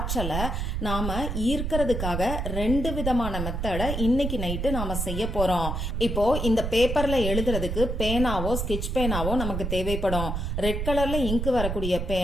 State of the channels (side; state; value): right; noise; rumble, 2 dB below the sound